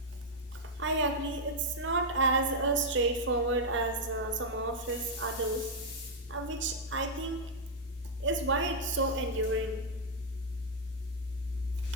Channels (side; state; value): both; normal; correlation -0.03